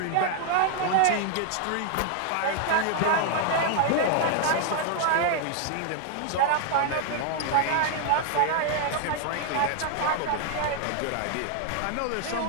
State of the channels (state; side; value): different; both; correlation 0.00